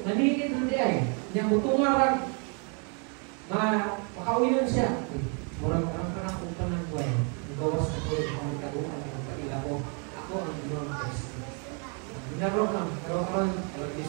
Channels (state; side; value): quieter; left; 37.8 dB